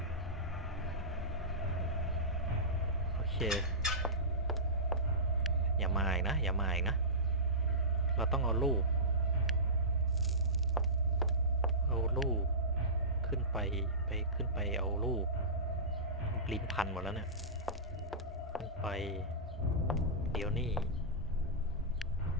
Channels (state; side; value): normal; both; correlation -0.20